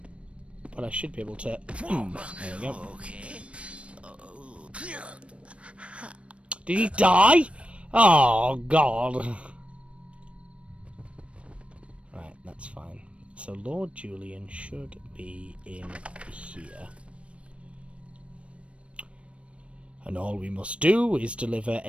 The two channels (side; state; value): left; late; 0.061 ms